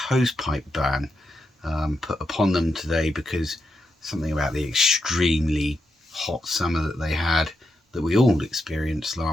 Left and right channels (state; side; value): normal; both; correlation 0.85